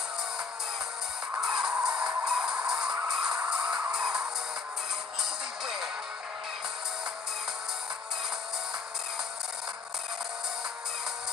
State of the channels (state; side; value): quieter; right; 4.6 dB